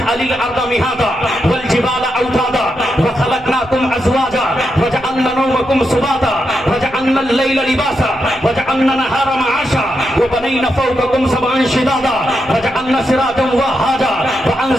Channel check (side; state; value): right; noise; rumble, 22 dB below the sound